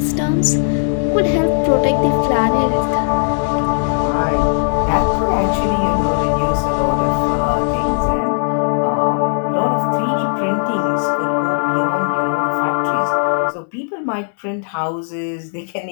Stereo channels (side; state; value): right; silent; digital silence